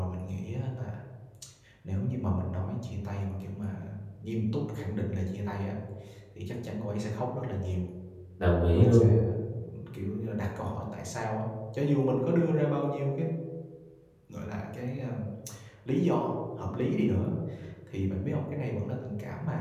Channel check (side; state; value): both; identical; correlation 1.00